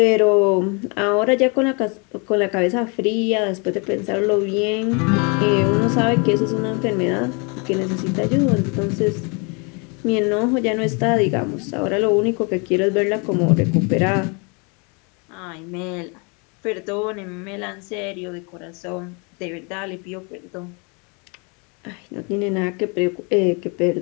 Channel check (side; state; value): right; quieter; 32.9 dB